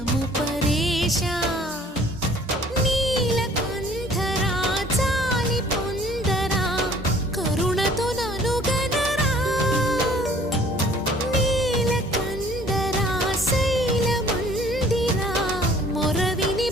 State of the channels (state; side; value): normal; both; correlation 0.54